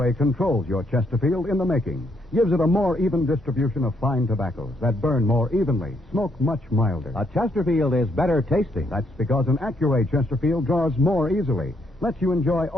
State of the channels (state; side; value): normal; both; correlation 0.74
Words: controls your Chesterfield in the making. Gives it a more even distribution of fine tobaccos that burn more evenly, smoke much milder. A Chesterfield is better tasting. That's because an Accuray Chesterfield draws more easily, lets you enjoy